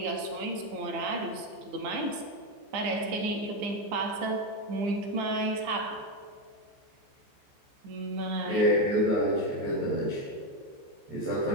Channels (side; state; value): left; late; 15 ms